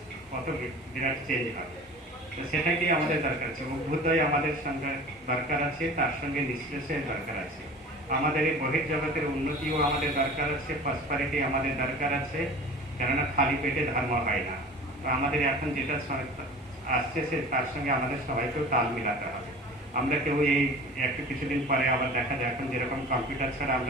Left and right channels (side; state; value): both; normal; correlation 0.40